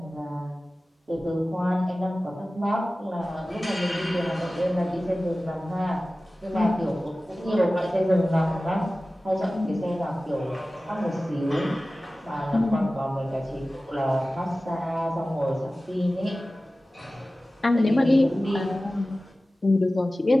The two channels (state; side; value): normal; both; correlation 0.96